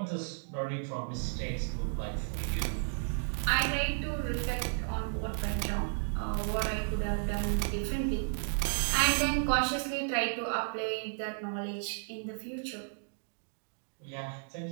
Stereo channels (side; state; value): left; silent; digital silence